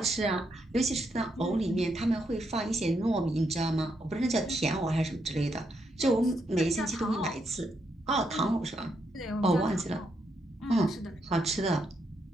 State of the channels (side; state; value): both; normal; correlation 0.79